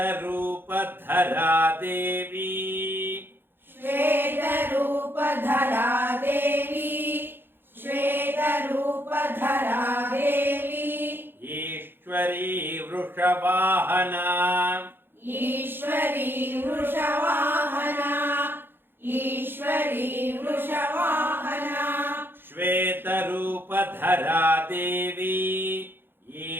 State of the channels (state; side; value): late; left; 0.10 ms